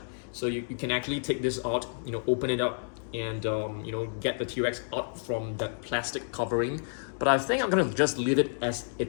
so you can actually take this out, open it up and get the T-Rex out from that plastic covering. But I think I'm gonna just leave it as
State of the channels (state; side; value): silent; right; digital silence